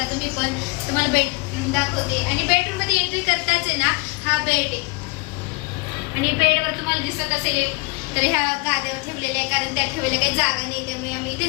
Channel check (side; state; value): right; quieter; 29.1 dB